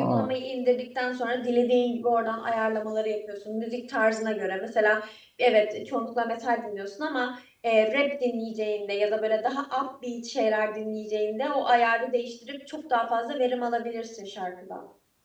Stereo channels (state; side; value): identical; both; correlation 1.00